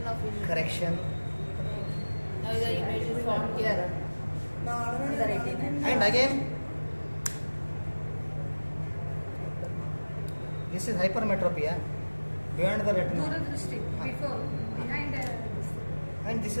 of vision. Correction. Now the image is formed here. On the retina. And again this is hypermetropia beyond the retina. Before, behind. And this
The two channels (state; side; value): inverted; both; correlation -1.00